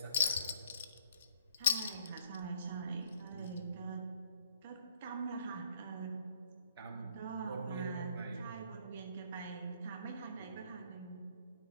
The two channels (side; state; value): both; inverted; correlation -0.61